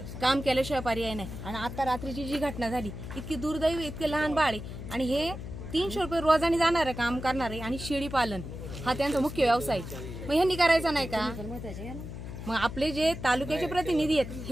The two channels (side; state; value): left; noise; hum, 9 dB below the sound